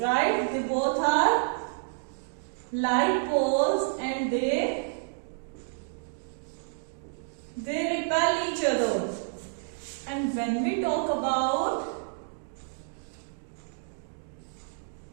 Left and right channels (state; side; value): silent; left; digital silence